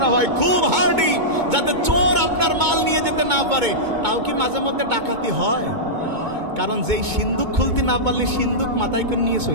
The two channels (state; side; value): late; left; 2.2 ms